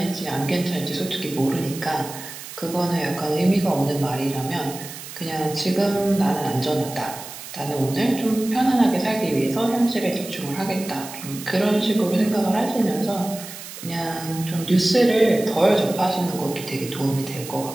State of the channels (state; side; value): noise; right; hiss, 12 dB below the sound